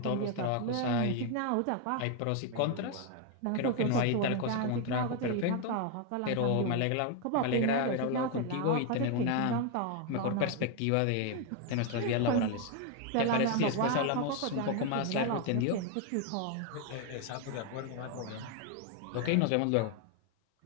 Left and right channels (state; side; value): different; both; correlation 0.01